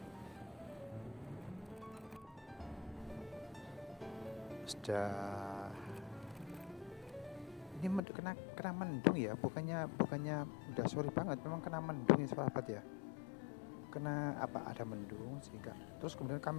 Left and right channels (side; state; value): right; drops out; at 8.0 s